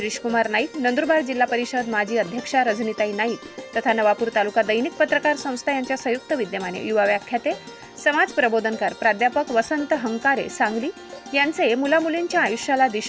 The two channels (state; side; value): identical; both; correlation 1.00